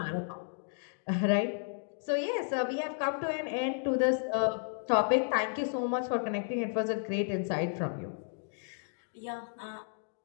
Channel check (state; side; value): silent; right; digital silence